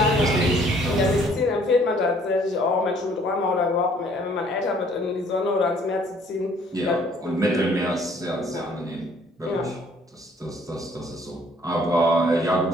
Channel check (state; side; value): normal; both; correlation 0.60